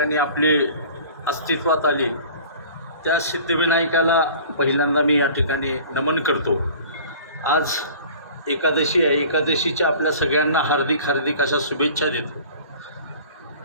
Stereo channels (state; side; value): inverted; both; correlation -0.45